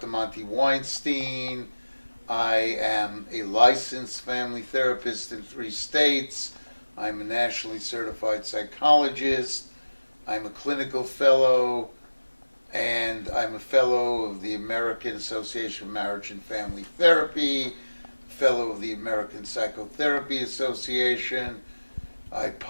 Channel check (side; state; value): both; inverted; correlation -1.00